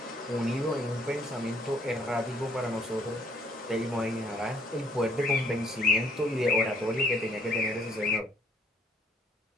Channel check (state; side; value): normal; both; correlation 0.64